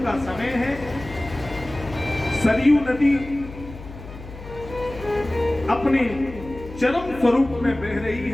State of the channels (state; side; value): noise; left; hum, 14 dB below the sound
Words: का समय है, सरयू नदी अपने चरम स्वरूप में बह रही